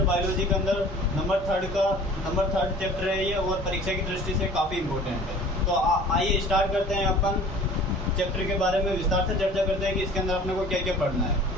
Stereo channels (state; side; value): normal; both; correlation 0.46